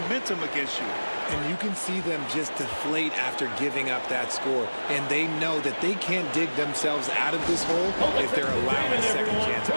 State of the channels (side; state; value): both; inverted; correlation -1.00